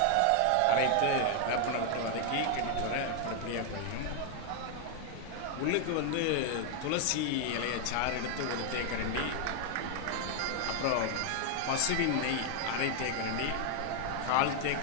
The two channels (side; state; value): both; different; correlation 0.00